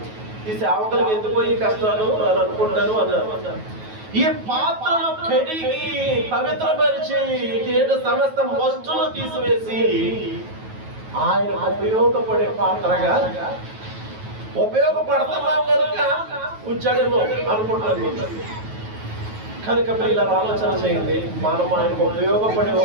ఈ సేవకులకు ఎందుకు ఈ కష్టాలు అని అనుకుంటాను అన్నారు. ఈ పాత్రను కడిగి పవిత్రపరిచి సమస్త వస్తువులు తీసివేసి ఆయన ఉపయోగపడే పాత్రగా ఉపయోగపడుతున్నాం కనుక ఉంచాడేమో అనుకుంటారు. కనుక పిల్లలు ఆలోచన చేయండి. మనం ఆయనకు ఉపయోగపడే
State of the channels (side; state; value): left; late; 9.3 ms